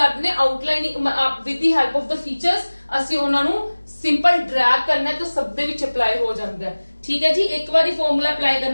ਦਿੰਦੇ outlining with the help of the features ਅਸੀਂ ਉਹਨਾਂ ਨੂੰ ਸਿੰਪਲ ਡਰੈਗ ਕਰਨਾ ਤਾਂ ਸਭ ਦੇ ਵਿੱਚ ਅਪਲਾਈ ਹੋ ਜਾਂਦਾ ਹੈ। ਠੀਕ ਹੈ ਜੀ, ਇੱਕ ਵਾਰੀ ਫਾਰਮੂਲਾ ਅਪਲਾਈ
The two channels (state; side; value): inverted; both; correlation -1.00